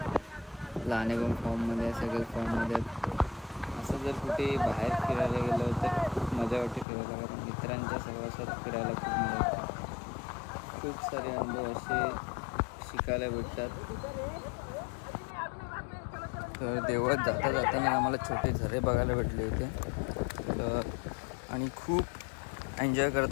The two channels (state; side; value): drops out; right; at 6.9 s